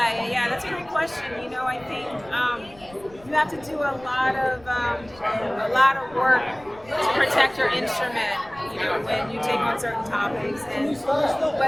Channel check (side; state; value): left; noise; rumble, 24 dB below the sound